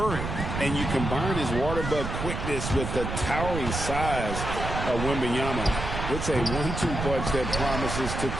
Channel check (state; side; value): noise; right; rumble, 4 dB below the sound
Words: And you combine his water bug quickness with the towering size of Wembanyama. It's a 1-2 punch that promises to